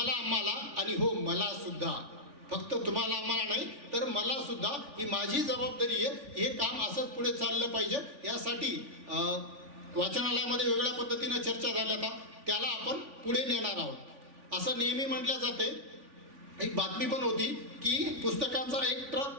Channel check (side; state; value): left; late; 3.5 ms